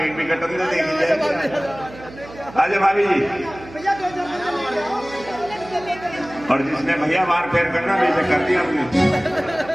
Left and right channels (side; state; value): right; noise; hum, 17 dB below the sound